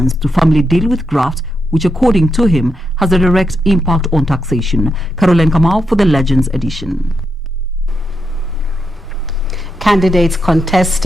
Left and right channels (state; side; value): normal; both; correlation 0.83